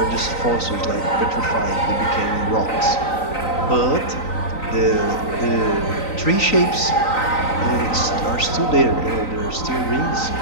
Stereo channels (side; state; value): right; late; 3.9 ms